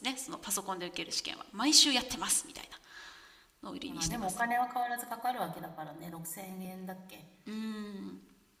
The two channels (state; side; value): identical; both; correlation 1.00